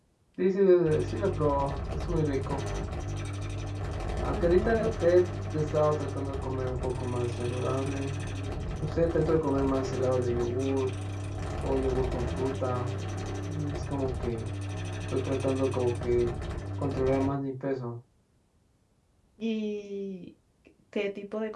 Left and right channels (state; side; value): identical; both; correlation 1.00